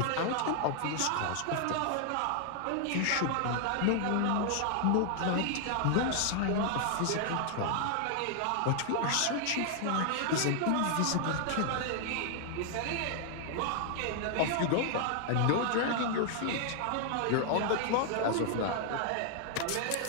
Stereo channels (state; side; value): different; both; correlation 0.00